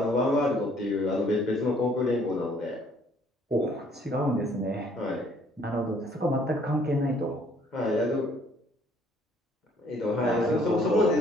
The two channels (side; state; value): both; normal; correlation 0.61